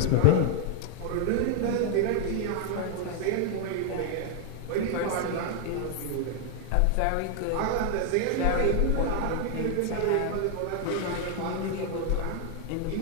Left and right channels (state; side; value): different; both; correlation 0.00